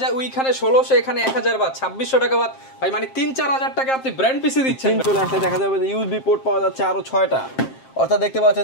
ওইখানে 1600 এখানে 1000 বাদ 2600 টাকা বাদ ভাই, মানে 3-4000 টাকা আপনি ব্র্যান্ড পিসি দিচ্ছেন। চলে আসলে দেখা যাবে যে ইউএসবি পোর্ট পাওয়া যাচ্ছে আরো 6টা, অর্থাৎ দেখতে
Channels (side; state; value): right; late; 7.6 ms